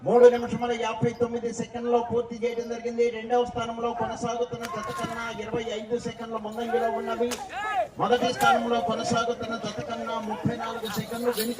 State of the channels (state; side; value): identical; both; correlation 1.00